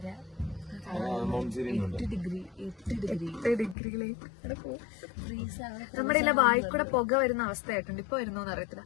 നമ്മുടെ ഇല്ല വായിക്കൂടെ പുക വരുന്ന അവസ്ഥയായിട്ടുണ്ട്. ഇപ്പൊ വരുന്നോന്ന് അറിയത്തില്ല.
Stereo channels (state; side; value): drops out; right; at 3.8 s